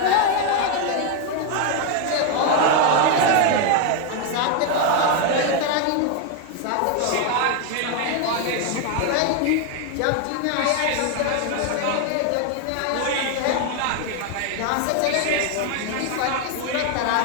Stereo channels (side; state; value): both; different; correlation 0.01